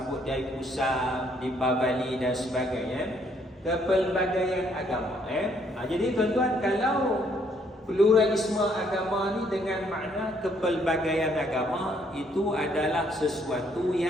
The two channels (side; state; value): both; normal; correlation 0.68